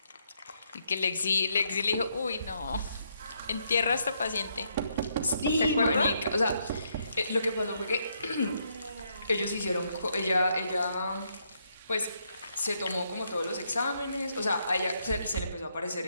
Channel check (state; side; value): inverted; both; correlation -0.75